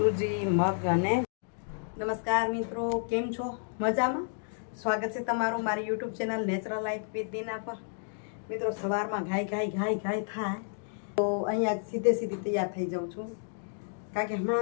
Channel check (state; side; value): silent; right; digital silence